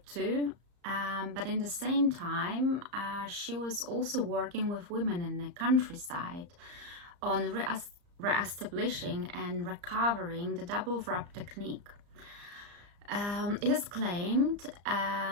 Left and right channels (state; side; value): late; left; 34 ms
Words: II. But in the same time, she was also working with women in the countryside on re-establishing and recovering the double wrap technique. It is claimed